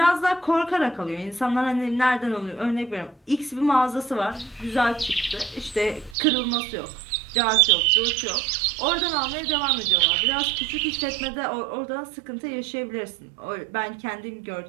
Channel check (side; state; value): left; drops out; at 6.2 s